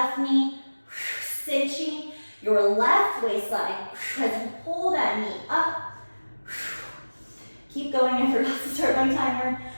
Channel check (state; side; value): inverted; both; correlation -1.00